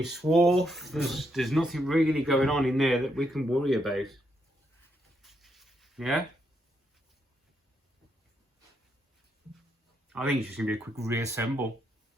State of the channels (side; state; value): both; normal; correlation 0.78